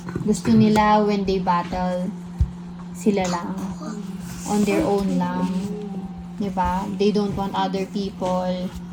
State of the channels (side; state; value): both; identical; correlation 1.00